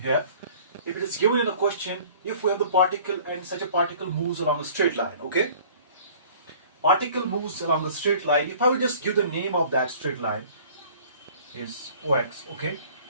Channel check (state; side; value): inverted; both; correlation -0.50